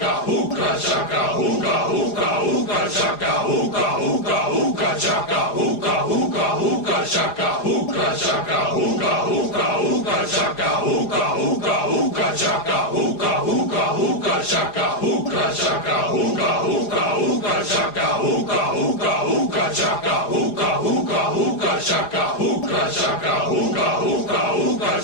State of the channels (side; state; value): right; late; 4.9 ms